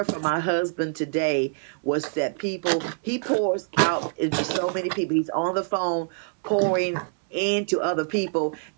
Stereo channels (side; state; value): left; silent; digital silence